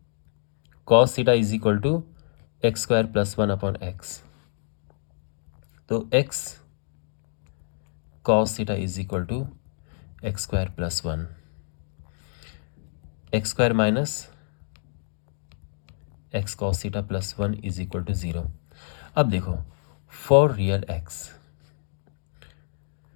cos theta is equal to X square plus 1 upon X. तो X cos theta is equal to X square plus 1, X square minus X cos theta plus 1 is equal to 0। अब देखो फॉर रियल एक्स,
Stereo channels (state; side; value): silent; right; digital silence